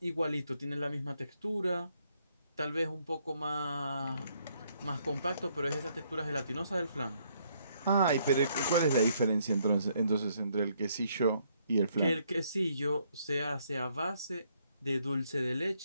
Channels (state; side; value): inverted; both; correlation -0.71